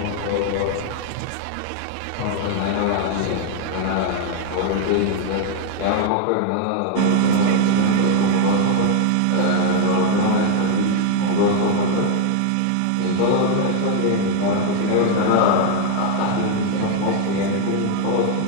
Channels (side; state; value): both; different; correlation 0.01